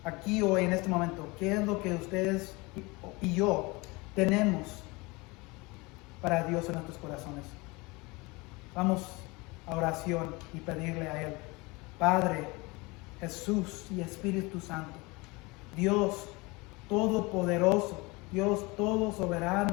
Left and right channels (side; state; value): right; quieter; 25.0 dB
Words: aquí hoy en este momento, ¿qué es lo que ustedes y yo tenemos para Dios en nuestros corazones? Vamos a oración y pedirle a Él: Padre, Jesús y Espíritu Santo, Dios todopoderoso, Dios todo